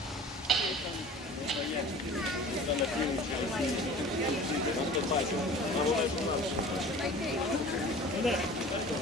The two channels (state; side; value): normal; both; correlation 0.42